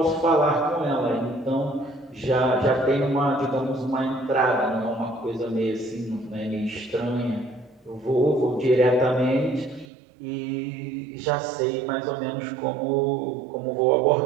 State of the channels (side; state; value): left; drops out; at 9.9 s